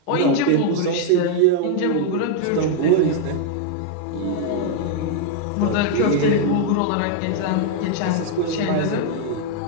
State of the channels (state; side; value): different; both; correlation 0.00